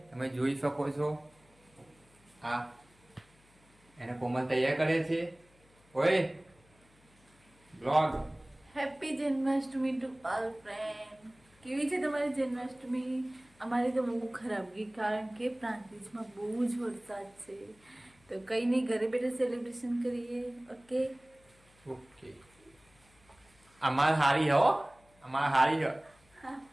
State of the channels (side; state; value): left; noise; hum, 30 dB below the sound